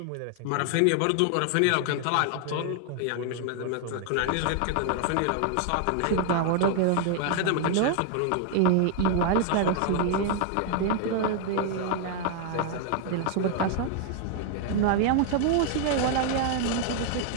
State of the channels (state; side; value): different; both; correlation 0.00